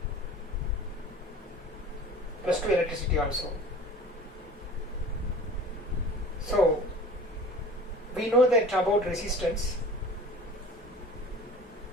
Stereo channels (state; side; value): normal; both; correlation 0.41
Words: plus 2 electricity also. So we know that about resistance.